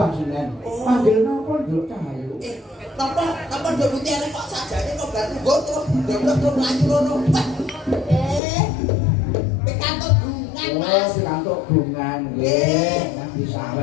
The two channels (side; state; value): right; drops out; at 8.4 s